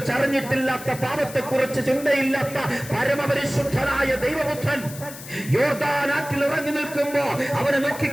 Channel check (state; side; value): noise; left; hiss, 14 dB below the sound